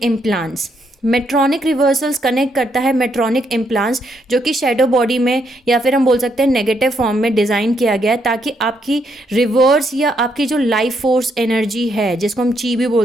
implants. Medtronic reversals connect करता है मेट्रॉनिक इम्प्लांट्स, जो कि शेडो बॉडी में या फिर हम बोल सकते हैं नेगेटिव फॉर्म में डिज़ाइन किया गया है, ताकि आपकी रिवर्स या आपकी जो लाइफ फोर्स एनर्जी है, जिसको हम ची भी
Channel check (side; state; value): both; normal; correlation 0.75